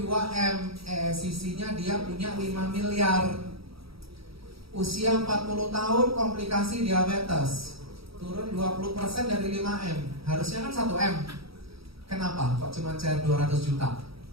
2M, ESCC-nya dia punya 5 miliar. Usia 40 tahun, komplikasi diabetes, turun 20% dari 5M. Harusnya kan 1M. Kenapa? Kok cuma cair 200 juta?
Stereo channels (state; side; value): late; left; 0.76 ms